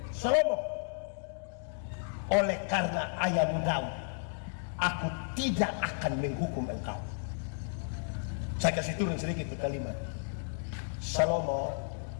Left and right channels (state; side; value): silent; right; digital silence